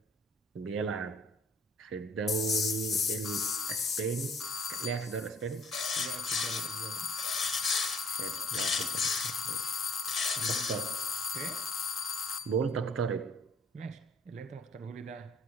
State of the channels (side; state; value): both; normal; correlation 0.58